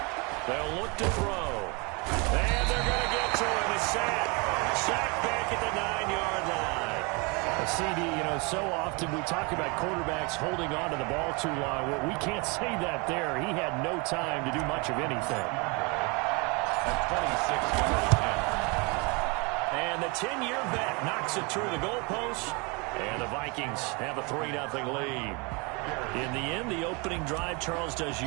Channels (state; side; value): quieter; left; 29.8 dB